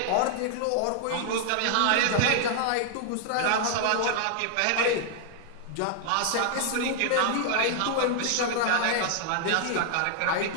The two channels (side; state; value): both; different; correlation 0.00